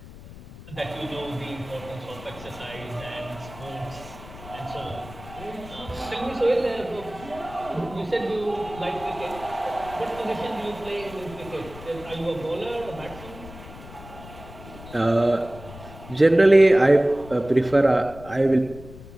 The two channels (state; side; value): noise; left; rumble, 16 dB below the sound